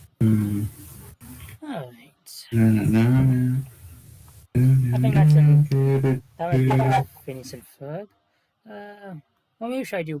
Mm. All right. I think that's that was Phineas and Ferb. Well, maybe should I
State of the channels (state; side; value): identical; both; correlation 1.00